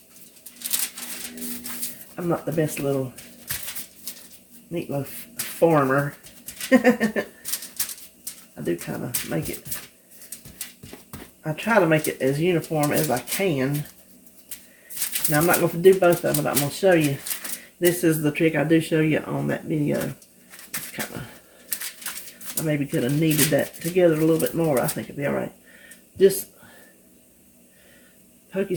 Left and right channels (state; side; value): identical; both; correlation 1.00